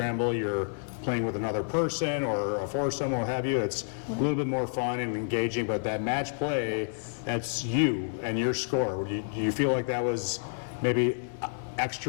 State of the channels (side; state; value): right; silent; digital silence